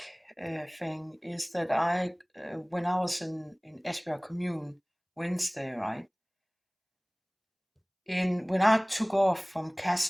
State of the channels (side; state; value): both; identical; correlation 1.00